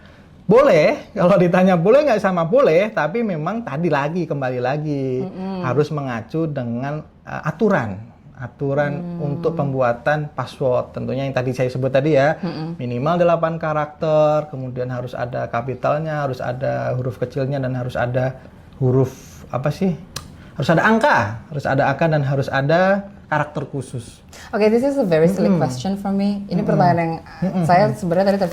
boleh, kalau ditanya boleh nggak sama boleh, tapi memang kembali lagi harus mengacu dengan aturan untuk pembuatan password. Tentunya yang tadi saya sebut tadi ya, minimal 8 karakter, kemudian harus ada kapitalnya, harus ada huruf kecilnya, dan harus ada huruf harus ada angka dan harus ada karakter khusus. Oke, this is a very silly question for me. Ini pertanyaan yang saya sebenarnya tadi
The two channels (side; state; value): both; identical; correlation 1.00